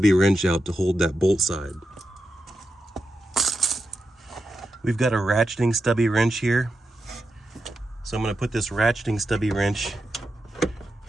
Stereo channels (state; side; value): normal; both; correlation 0.88